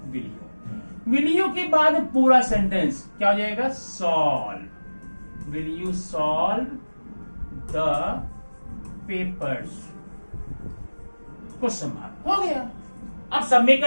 विल यू। विल यू के बाद पूरा सेंटेंस क्या हो जाएगा, solve. Will you solve the papers question mark. हो गया। अब सबमिट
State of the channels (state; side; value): inverted; both; correlation -1.00